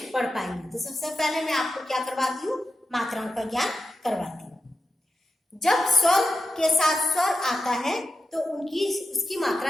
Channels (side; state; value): both; normal; correlation 0.90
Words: पढ़ पाएंगे। तो सबसे पहले मैं आपको क्या करवाती हूँ? मात्राओं का ज्ञान करवाती हूँ। जब स्वर के साथ स्वर आता है तो उसकी मात्रा